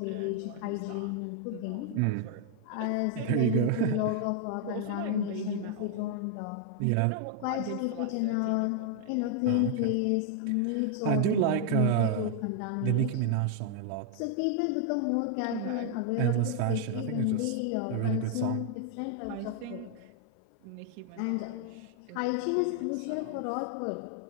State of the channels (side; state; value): both; different; correlation 0.00